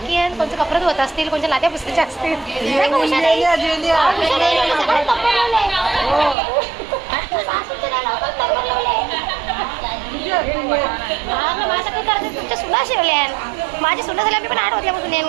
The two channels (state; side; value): drops out; left; at 6.4 s